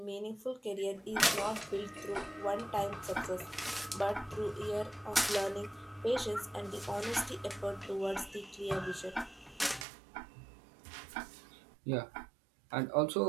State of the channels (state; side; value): drops out; left; at 9.9 s